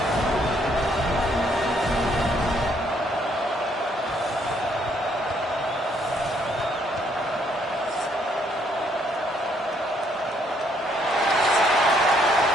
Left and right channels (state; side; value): normal; both; correlation 0.69